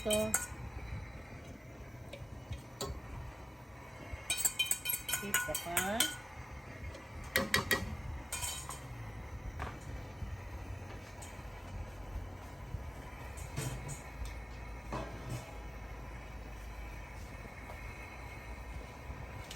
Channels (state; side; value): normal; both; correlation 0.97